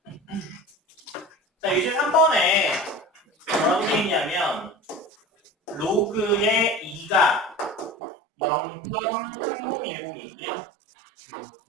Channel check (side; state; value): left; drops out; at 8.0 s